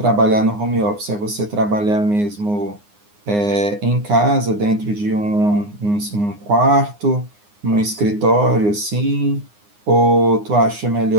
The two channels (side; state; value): left; late; 9.7 ms